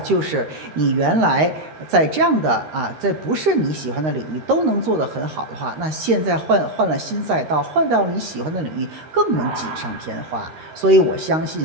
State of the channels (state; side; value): late; left; 13 ms